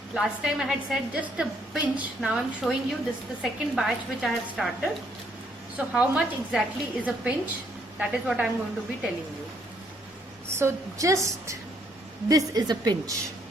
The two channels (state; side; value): normal; both; correlation 0.69